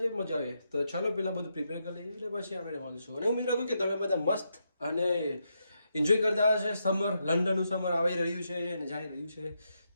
મજા આવે. તો ચાલો પહેલાં બધું પ્રિપેર કરી લઈએ એટલે પછી આપણે મળીશું. અને ઉમેદ રાખું કે તમે બધા મસ્ત અને એન્જોય કરતા હશે. સમર, લંડનનું સમર આવી રહ્યું છે અને જઈ રહ્યું છે,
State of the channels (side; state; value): both; inverted; correlation -0.82